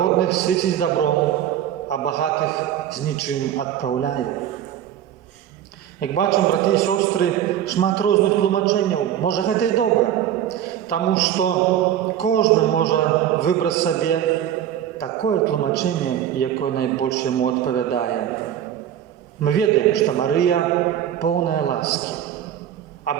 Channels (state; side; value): quieter; left; 10.7 dB